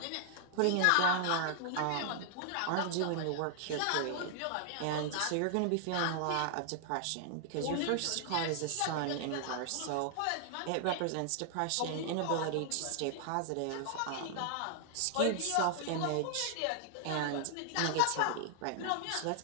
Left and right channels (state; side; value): different; both; correlation 0.00